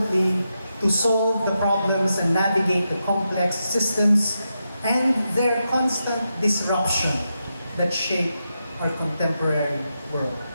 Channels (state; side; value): inverted; both; correlation -0.87